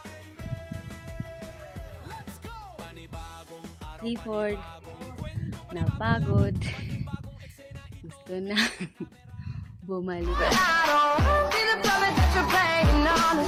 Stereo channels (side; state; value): both; identical; correlation 1.00